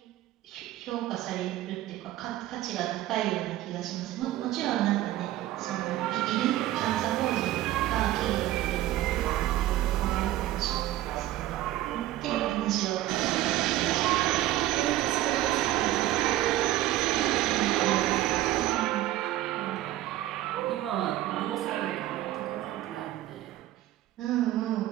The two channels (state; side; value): quieter; left; 14.8 dB